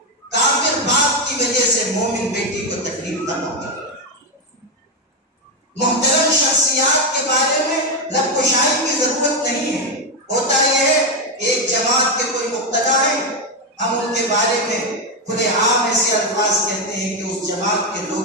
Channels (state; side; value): normal; both; correlation 0.08